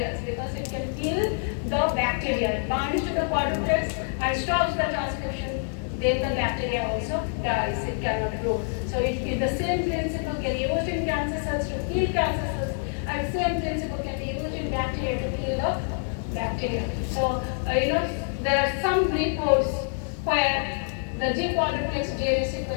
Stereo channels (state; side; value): silent; right; 61 dB below the other